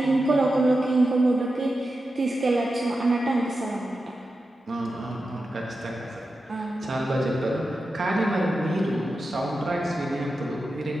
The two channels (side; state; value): both; normal; correlation 0.91